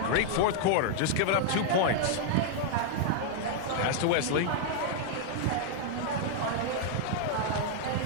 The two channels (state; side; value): different; both; correlation 0.00